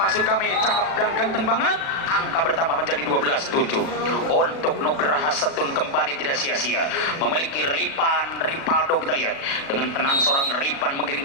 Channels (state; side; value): late; right; 36 ms